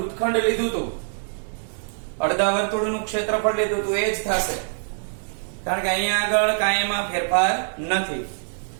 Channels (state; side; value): silent; left; digital silence